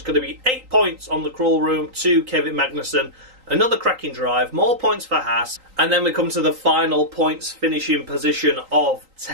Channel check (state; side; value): late; left; 3.8 ms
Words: going to be 8 points on the crawl room to Kevin Magnussen. Another cracking drive, more points for Haas. And then we come to the final points finishing position of